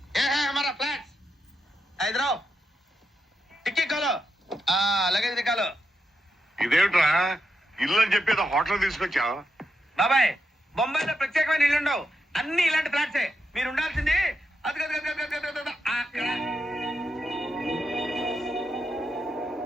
ఏ హై హమారా ఫ్లాట్స్ ఇधर आओ. టిక్కీ खोलो. Luggage Niccolo. ఇదేమిట్రా ఇల్లు అని చెప్పేది హోటల్ తీసుకొచ్చావు? బాబాయ్ బొంబాయిలో ప్రత్యేకమైన ఇల్లు ఉండవు, అన్ని ఇలాంటి ఫ్లాట్సే. మీరు ఉండాల్సింది అది అక్కడ.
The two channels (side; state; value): both; normal; correlation 0.84